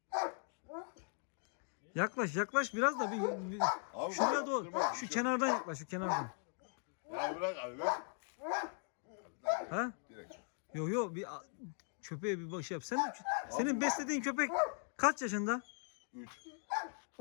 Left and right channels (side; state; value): right; silent; 51 dB below the other